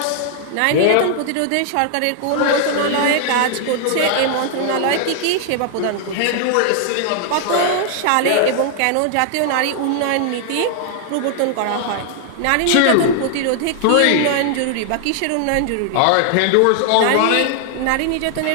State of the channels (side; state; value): both; different; correlation 0.00